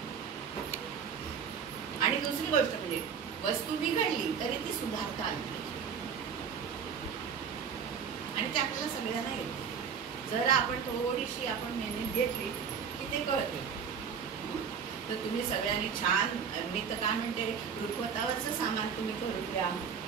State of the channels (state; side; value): quieter; left; 6.8 dB